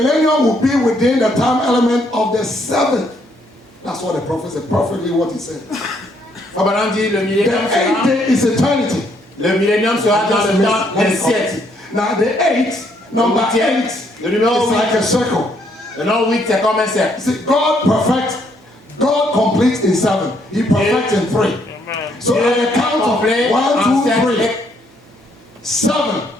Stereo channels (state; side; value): normal; both; correlation 0.70